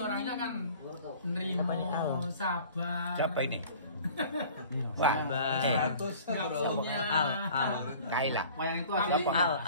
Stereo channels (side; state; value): both; inverted; correlation -0.47